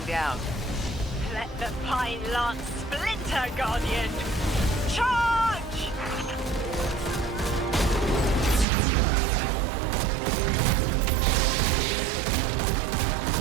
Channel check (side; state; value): left; drops out; at 8.7 s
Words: down. Let the Pine Lance splinter, Guardian! Charge!